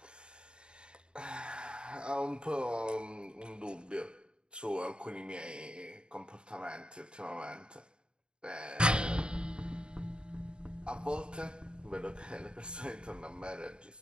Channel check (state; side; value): late; left; 0.051 ms